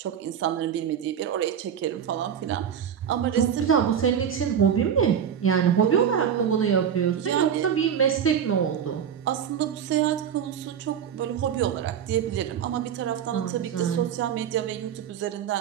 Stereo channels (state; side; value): quieter; left; 8.5 dB